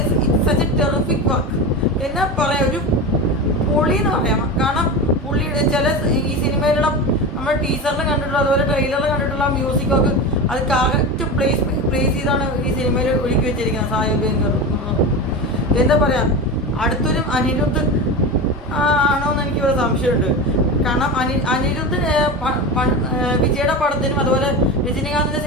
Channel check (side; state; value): both; normal; correlation 0.24